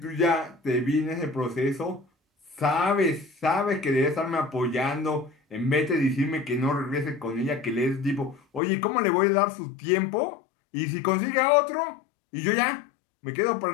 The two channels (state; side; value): drops out; right; at 8.6 s